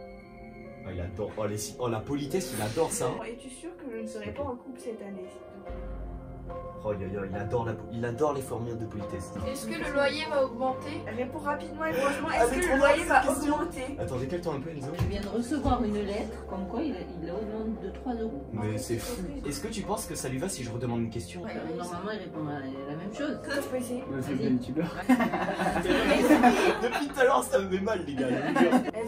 Oh, il adore, oh la politesse, il adore ça. Es-tu sûr que je ne serai pas en couple cette année, s'il te plaît? Oh il adore les formules de politesse. Est-ce que le loyer va augmenter? Réponds rapidement et franchement, Ah, est-ce c'est que trop le drôle, loyer va cette question. augmenter? Attends, décale-toi un peu Enzo. Je viens de recevoir une lettre comme quoi il augmente de 3 €. Mais c'est fou. Est-ce que tu penses que ça lui va si je redemande une question? Ouais, normalement, il répond à la même chose. Je peux essayer. Vas-y. Depuis tout à l'heure, ça me fait mal les gars. je vous jure.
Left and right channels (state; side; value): identical; both; correlation 1.00